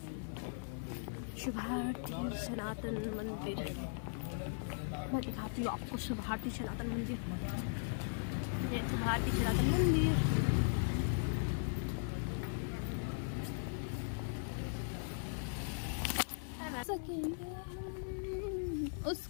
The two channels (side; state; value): right; silent; 52 dB below the other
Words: शुभारती सनातन मंदिर। मैं दिखाती हूँ आपको शुभारती सनातन मंदिर। ये शुभारती सनातन मंदिर।